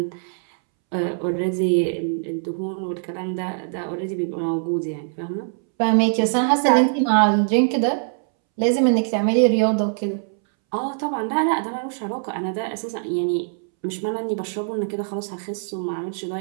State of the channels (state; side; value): silent; left; 64 dB below the other